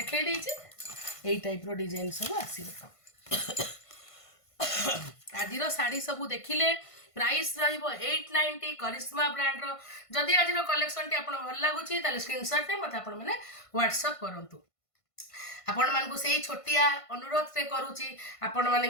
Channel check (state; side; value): late; right; 1.5 ms